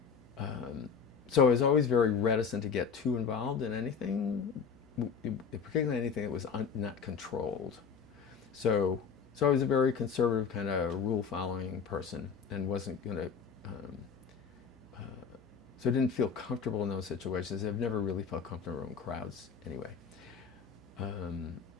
I was always very reticent to get too involved in anything, particularly anything that was not controlled. So I was a very conservative kind of rule-following person, and wasn't going to. So I didn't feel comfortable in those situations. I've never really felt comfortable in crowds anyway.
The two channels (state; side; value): quieter; right; 6.2 dB